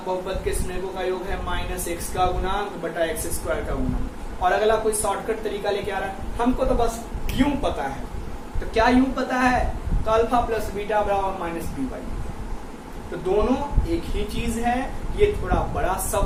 बहुपद के शून्यकों का योग है माइनस एक्स का गुणांक बटा एक्स स्क्वायर का गुणांक, और अगला कोई शॉर्टकट तरीका लेके आ रहा है, हमको तो बस यूं पता है, तो क्या यूं पता है, तो अल्फा प्लस बीटा बराबर माइनस बी बाई, तो दोनों एक ही चीज है, ये थोड़ा बड़ा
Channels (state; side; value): identical; both; correlation 1.00